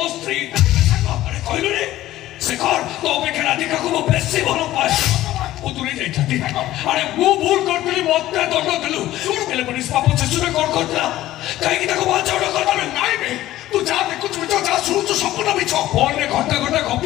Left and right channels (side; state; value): right; quieter; 14.9 dB